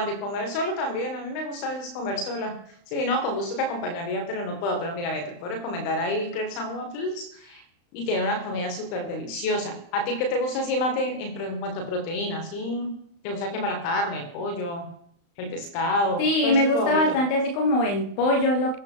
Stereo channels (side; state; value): right; late; 35 ms